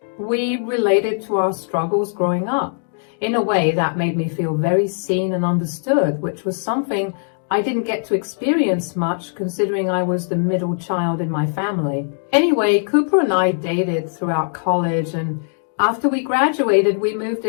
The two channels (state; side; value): silent; right; 66 dB below the other